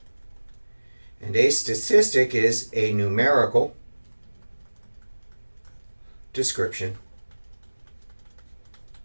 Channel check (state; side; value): inverted; both; correlation -1.00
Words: And a statistic is a numerical description